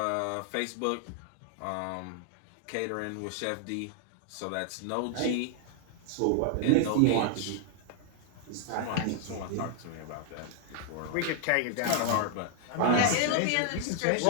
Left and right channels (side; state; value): both; different; correlation 0.00